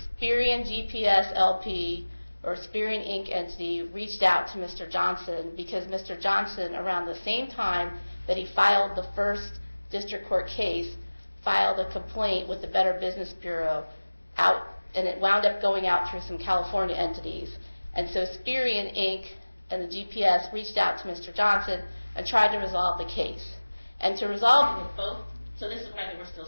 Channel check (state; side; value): inverted; both; correlation -1.00